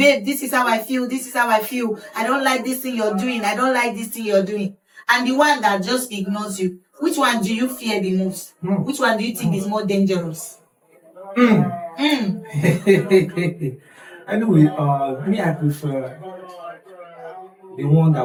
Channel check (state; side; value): identical; both; correlation 1.00